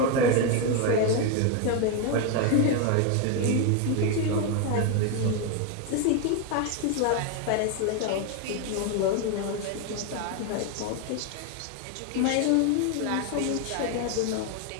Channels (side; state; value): both; different; correlation 0.01